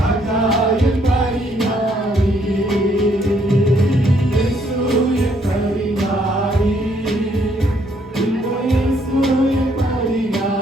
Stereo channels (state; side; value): normal; both; correlation 0.69